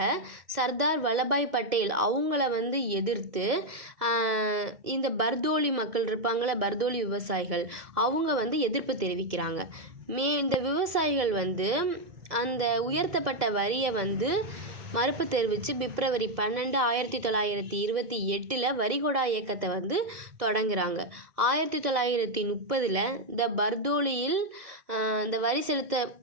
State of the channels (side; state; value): left; late; 1.7 ms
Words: சர்தார் வல்லபாய் பட்டேல் அவங்கள எதிர்த்து இந்த பர்தோலி மக்கள் இருப்பாங்கள, பர்தோலி விவசாயிகள், அவங்க எதிர்ப்பு தெரிவிக்கிறாங்க. இந்த விவசாயிகள் அந்த உயர்த்தப்பட்ட வரியை மறுப்பு தெரிவித்து பிப்ரவரி 12 1928 வரிகொடா இயக்கத்தை தொடங்குறாங்க. 1930 இந்த பர்தோலியில் இந்த வரி செலுத்த